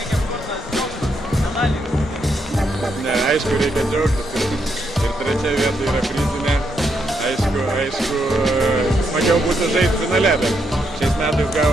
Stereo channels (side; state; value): both; normal; correlation 0.79